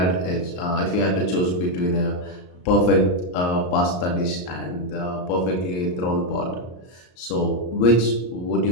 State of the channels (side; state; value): right; late; 34 ms